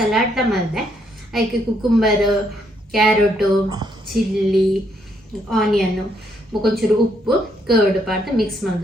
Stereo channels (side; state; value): both; normal; correlation 0.73